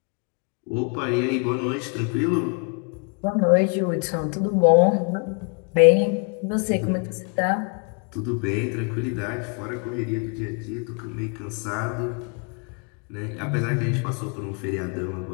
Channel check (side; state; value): right; quieter; 37.7 dB